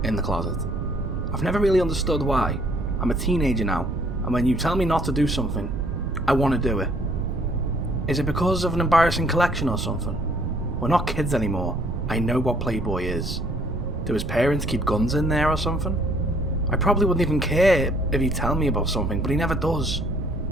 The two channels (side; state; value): right; noise; rumble, 6 dB below the sound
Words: in the closet. I've never really understood why. I'm a teenager now, and when you tell me not to do something, I want to do it. Is it because of an embarrassing collection or something? We're not kids anymore. I know what Playboy is. Do his parents keep guns in there or something? I probably wouldn't even care if he'd tell me about something, but he never does.